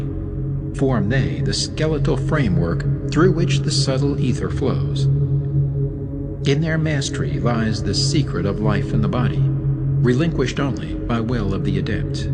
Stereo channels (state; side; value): identical; both; correlation 1.00